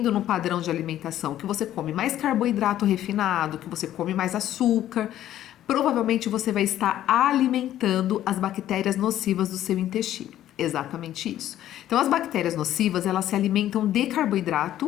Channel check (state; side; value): quieter; right; 12.4 dB